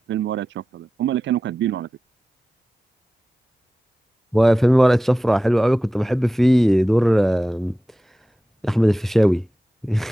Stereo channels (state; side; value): normal; both; correlation 0.95